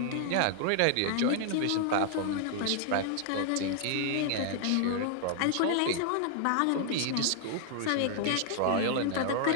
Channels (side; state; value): both; different; correlation -0.01